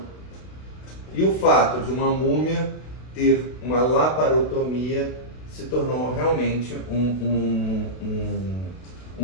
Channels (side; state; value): right; late; 32 ms